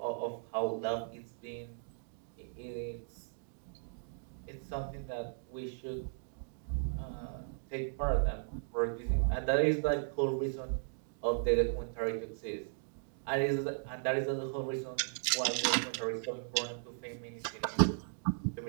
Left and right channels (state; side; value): silent; left; digital silence